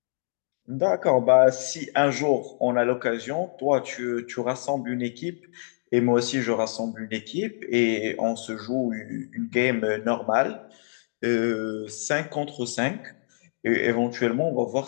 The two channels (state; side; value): silent; right; digital silence